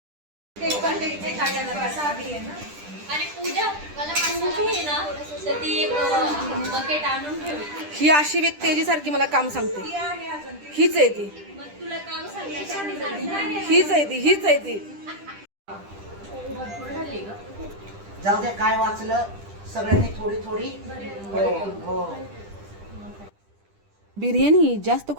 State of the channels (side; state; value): left; late; 10 ms